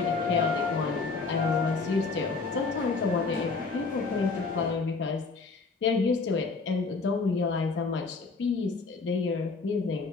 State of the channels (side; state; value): right; quieter; 4.3 dB